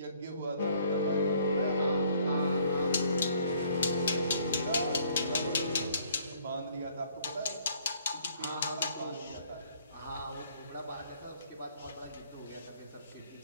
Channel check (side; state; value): both; inverted; correlation -0.61